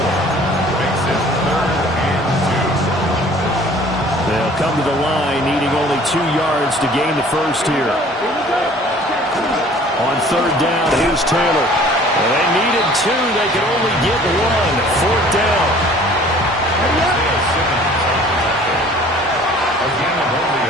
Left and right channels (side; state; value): both; normal; correlation 0.51